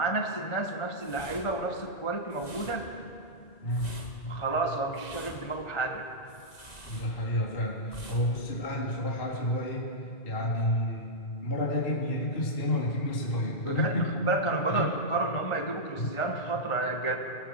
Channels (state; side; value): late; right; 1.9 ms